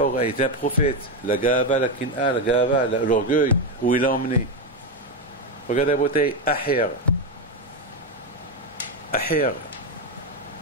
il était un prophète. La gava, la kin'a, la gava, l'orgueil, où il l'a emmené. Regardez Rabotai, Aher,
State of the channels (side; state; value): both; normal; correlation 0.09